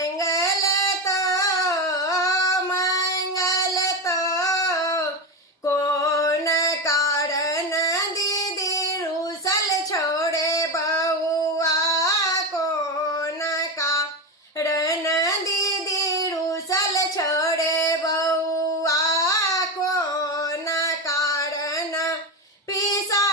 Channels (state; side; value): normal; both; correlation 0.16